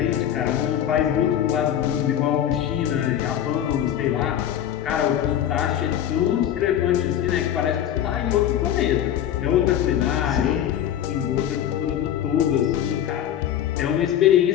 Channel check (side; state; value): right; quieter; 10.7 dB